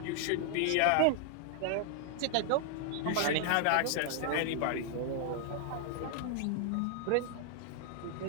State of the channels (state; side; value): different; both; correlation 0.00